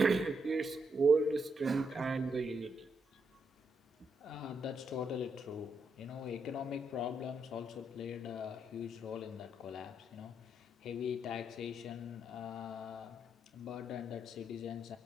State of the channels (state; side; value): normal; both; correlation 0.79